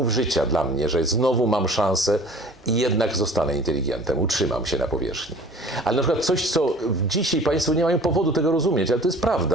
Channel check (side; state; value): both; normal; correlation 0.46